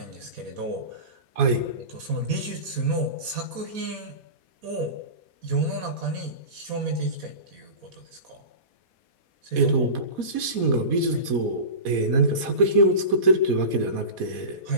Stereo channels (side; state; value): left; late; 4.2 ms